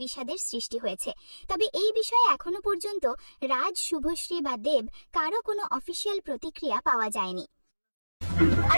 বিষাদের সৃষ্টি হয়েছে। তবে এই বিষয়ে এখনো পর্যন্ত রাজ, শুভশ্রী বা দেব কারো কোনো অফিসিয়াল প্রতিক্রিয়া পাওয়া যায়নি।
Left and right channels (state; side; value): inverted; both; correlation -1.00